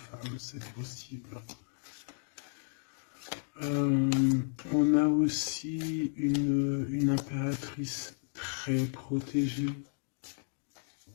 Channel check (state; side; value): silent; right; digital silence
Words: c'est possible. On a aussi une impératrice très protégée